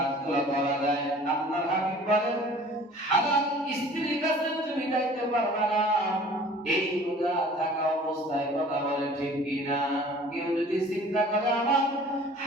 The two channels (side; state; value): both; normal; correlation 0.48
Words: করা যায়, আপনার হাবিব বলেন হালাল স্ত্রীর কাছে তুমি যাইতে পারবে না এই রোজা থাকা অবস্থায়। কথা বলে ঠিক কিনা? কেউ যদি চিন্তা করে আমার